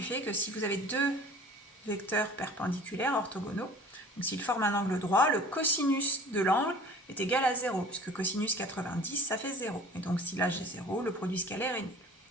fait que si vous avez deux vecteurs perpendiculaires orthogonaux, donc s'ils forment un angle droit, le cosinus de l'angle est égal à 0, puisque cosinus 90, ça fait 0. Et donc si là j'ai 0, le produit scalaire est nul.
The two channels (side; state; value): both; normal; correlation 0.45